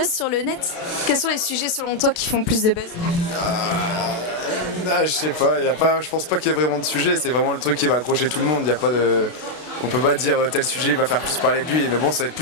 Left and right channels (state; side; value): late; right; 32 ms